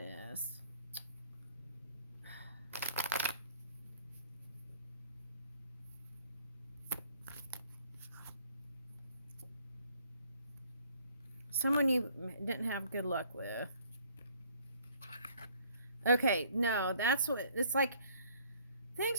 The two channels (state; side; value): inverted; both; correlation -0.60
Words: is. Someone you didn't have good luck with. Okay, no, that's what it's like. Things